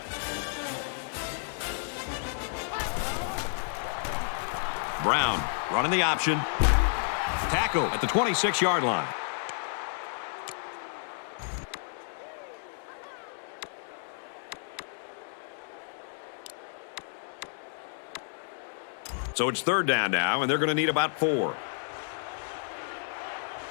Brown running the option. Tackle at the 26-yard line. So it's third down now, and they're going to need about 4.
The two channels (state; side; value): silent; right; digital silence